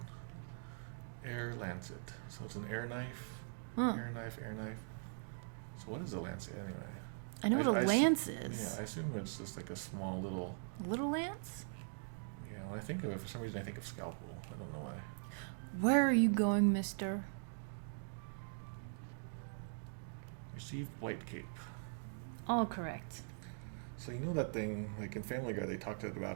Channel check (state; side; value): silent; left; digital silence